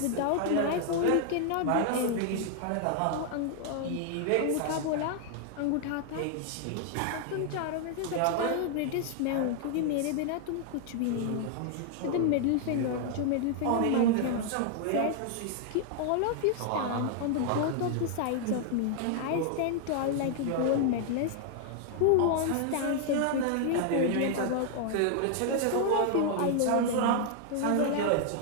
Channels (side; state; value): both; different; correlation 0.00